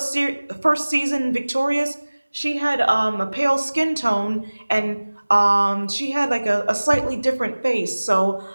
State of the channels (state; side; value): inverted; both; correlation -1.00